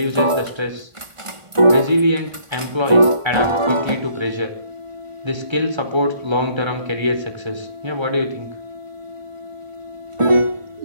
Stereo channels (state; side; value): late; left; 1.4 ms